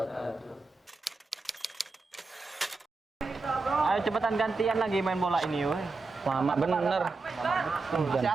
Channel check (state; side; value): quieter; left; 3.8 dB